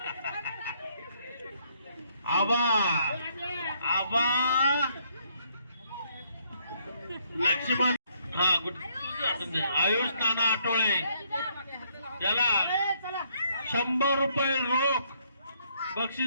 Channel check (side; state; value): both; inverted; correlation -0.69